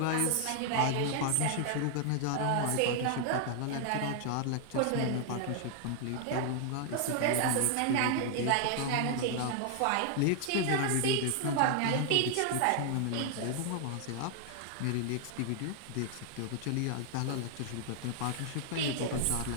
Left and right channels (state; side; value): different; both; correlation 0.00